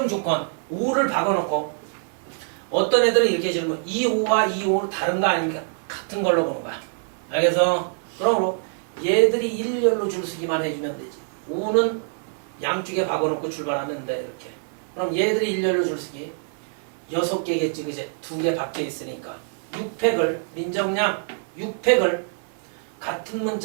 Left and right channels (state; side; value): silent; left; 58 dB below the other